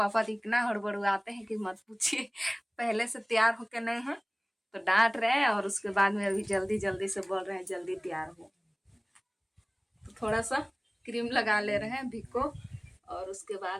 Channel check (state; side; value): identical; both; correlation 1.00